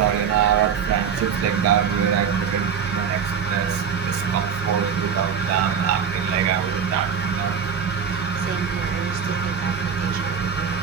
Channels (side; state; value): left; quieter; 7.2 dB